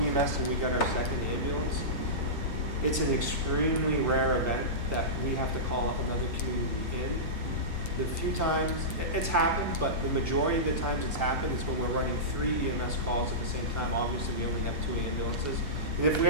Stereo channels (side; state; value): both; normal; correlation -0.17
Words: EMS and we got our second ambulance, it's an extremely rare event that we have to call up another community in. The few times it's happened, but the majority of the times it's happened is when we're running 3 EMS calls at the same time. Obviously, we only have 2 ambulances. And if we